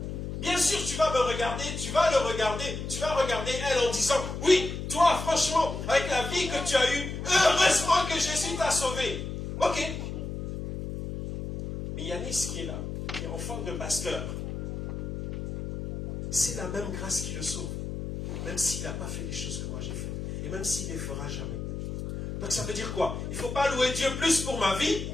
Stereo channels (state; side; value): noise; left; hum, 6 dB below the sound